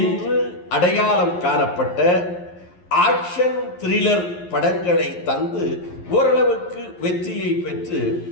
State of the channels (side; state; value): right; late; 11 ms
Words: அடையாளம் காணப்பட்ட ஆக்ஷன் த்ரில்லர் படங்களை தந்து ஓரளவுக்கு வெற்றியை பெற்று